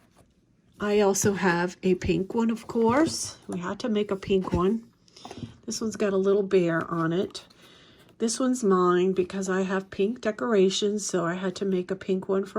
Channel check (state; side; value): identical; both; correlation 1.00